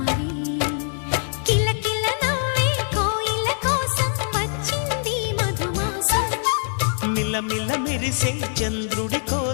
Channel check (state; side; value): silent; right; 63 dB below the other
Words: కిలకిల నవ్వే కోయిల కోసం వచ్చింది మధుమాసం మిలమిల మెరిసే చంద్రుడి